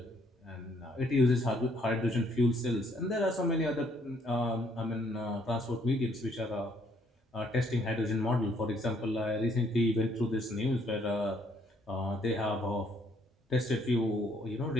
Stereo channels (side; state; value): both; normal; correlation 0.67